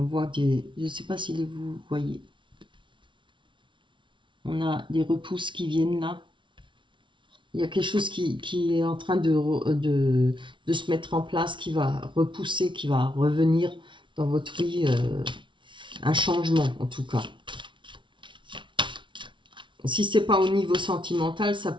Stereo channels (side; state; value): left; late; 0.24 ms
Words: voit des... Je ne sais pas si vous voyez. On a des repousses qui viennent là. Il y a quelque chose qui est en train de se mettre en place, qui va repousser, qui va revenir dans votre vie. Un changement, en tout cas. Si ce n'est pas au niveau sentimental, ça